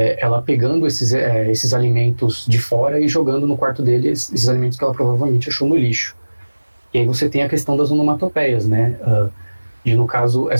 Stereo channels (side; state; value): both; inverted; correlation -1.00